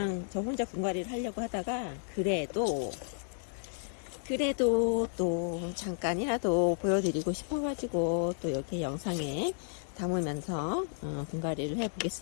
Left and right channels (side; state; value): right; silent; digital silence